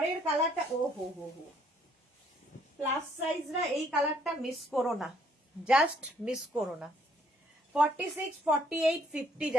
কালারটা ও হো হো হো, প্লাস সাইজরা এই কালারটা মিস করো না, জাস্ট মিস করো না। 46, 48, 50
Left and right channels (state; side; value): normal; both; correlation 0.66